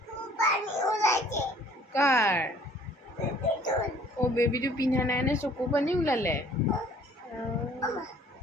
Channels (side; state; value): both; normal; correlation 0.55